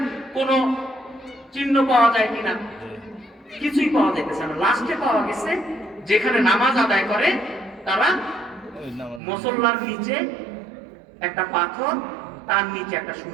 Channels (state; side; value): drops out; left; at 9.2 s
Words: কোনো চিহ্ন পাওয়া যায় কিনা, কিছুই পাওয়া যাইতেছে না। লাস্টে পাওয়া গেছে যেখানে নামাজ আদায় করে তারা, মুসল্লার নিচে একটা পাথর, তার নিচে একটা